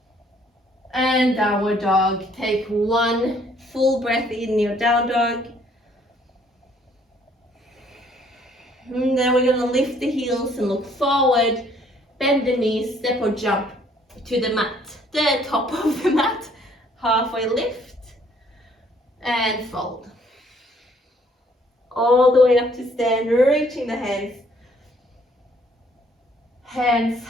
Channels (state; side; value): normal; both; correlation 0.63